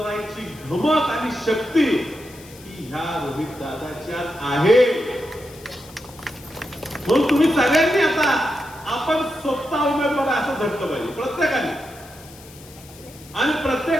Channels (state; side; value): noise; left; hiss, 21 dB below the sound